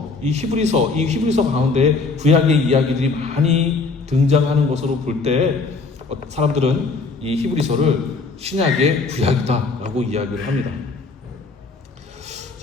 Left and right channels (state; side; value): quieter; right; 4.1 dB